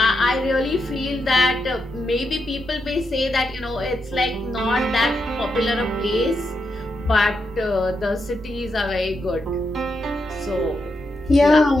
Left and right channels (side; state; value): right; noise; rumble, 21 dB below the sound